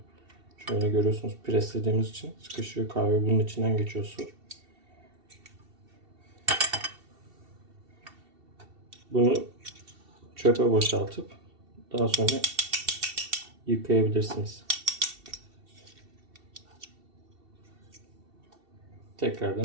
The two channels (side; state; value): left; late; 2.7 ms